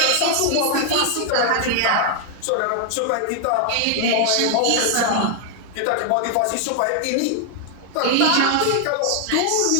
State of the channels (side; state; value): both; different; correlation 0.00